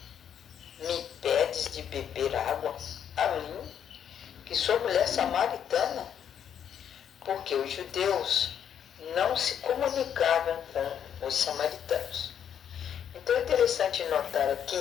me pedes de beber água a mim, que sou mulher samaritana? Porque os judeus não se comunicavam com os samaritanos. Então é interessante notar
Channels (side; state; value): right; quieter; 8.8 dB